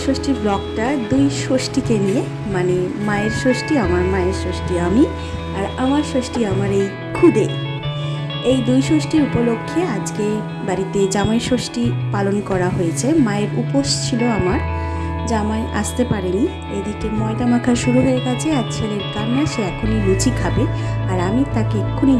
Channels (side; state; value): both; identical; correlation 1.00